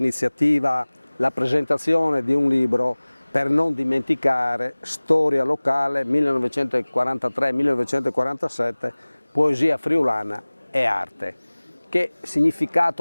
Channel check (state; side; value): inverted; both; correlation -1.00